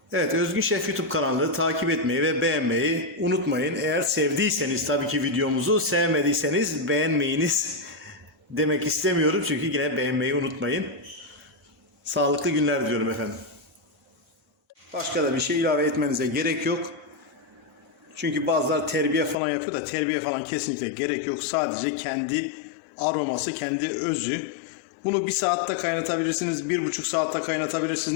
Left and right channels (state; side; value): drops out; right; at 19.4 s